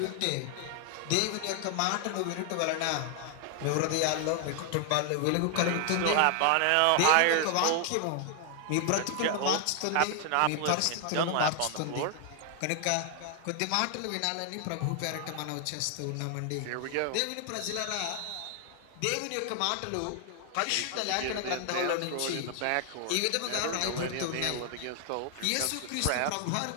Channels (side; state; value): both; different; correlation 0.00